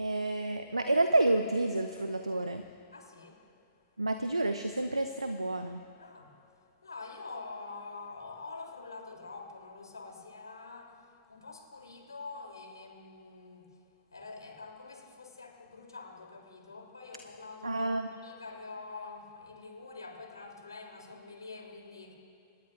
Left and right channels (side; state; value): both; inverted; correlation -0.86